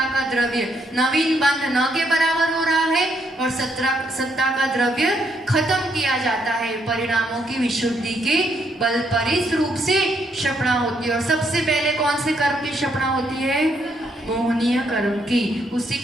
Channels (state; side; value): normal; both; correlation 0.74